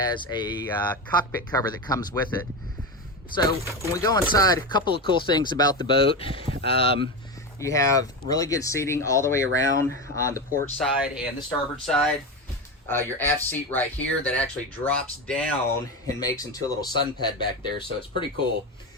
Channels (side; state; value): both; normal; correlation 0.18